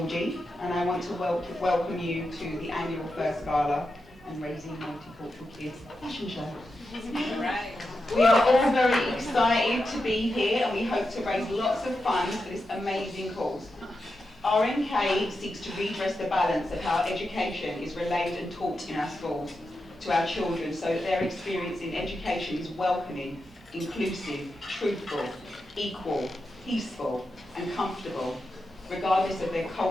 and I want to welcome you to the annual First Gala and Raising Multicultural Kids fashion show. We are all very excited to be here, and we hope to raise lots of funds for this amazing cause. RMK seeks to redress the balance of how education is relayed and taught in our schools to our children so that their experience in education is welcoming, inclusive, truthful, equal, peaceful, and comfortable, regardless of their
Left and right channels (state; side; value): normal; both; correlation 0.89